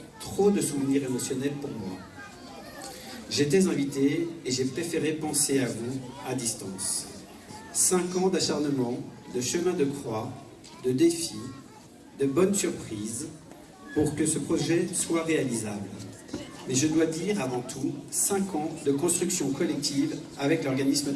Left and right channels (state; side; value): identical; both; correlation 1.00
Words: trop de souvenirs émotionnels pour moi. J'étais invité et j'ai préféré penser à vous à distance. 5 ans d'acharnement, de chemin de croix, de défis, de bonnes surprises pour que ce projet soit réalisable. Mais je dois dire avant tout 5 ans de construction collective avec l'organisme